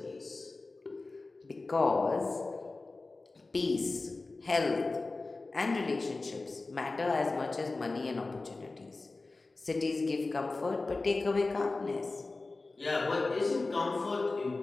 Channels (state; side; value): quieter; right; 3.5 dB